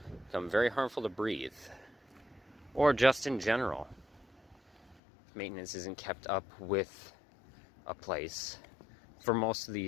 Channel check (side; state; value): right; drops out; at 5.0 s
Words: become very harmful to breathe, or just in general. Maintenance isn't kept up with a place for most of